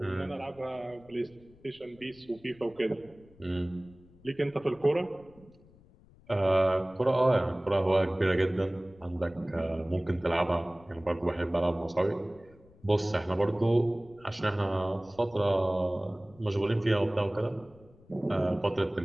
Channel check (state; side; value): noise; left; rumble, 26 dB below the sound